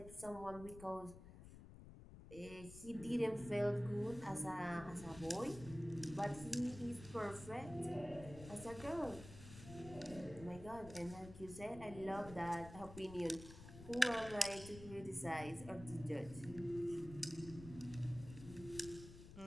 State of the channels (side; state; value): left; noise; rumble, 14 dB below the sound